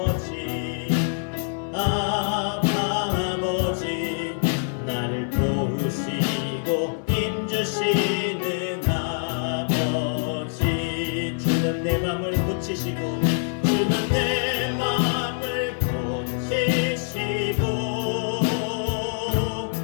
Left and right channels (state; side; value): silent; right; 59 dB below the other